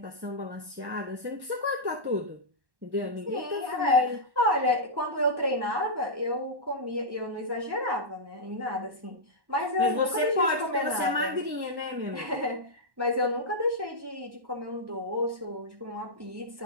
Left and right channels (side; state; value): left; late; 1.1 ms